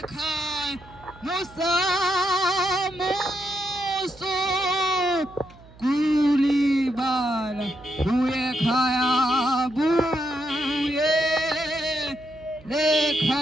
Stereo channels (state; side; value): noise; right; hum, 23 dB below the sound